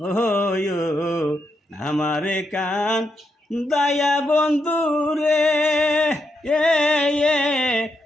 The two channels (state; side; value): normal; both; correlation 0.82